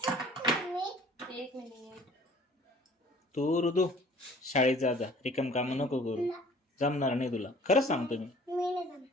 तू ऋतू शाळेत जा जा. रिकाम काम नको करू. जमणार नाही तुला. खरंच सांगतो मी.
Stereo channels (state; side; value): normal; both; correlation 0.51